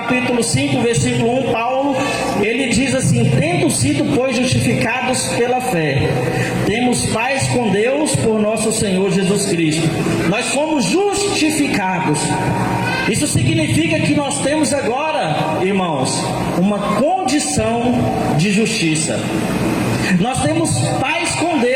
5, versículo 1, Paulo, ele diz assim: tendo sido, pois, justificados pela fé, temos paz com Deus por nosso Senhor Jesus Cristo. Nós fomos justificados justificados. Isso significa que nós temos agora, irmãos, uma condição de justiça. Nós temos paz com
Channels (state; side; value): identical; both; correlation 1.00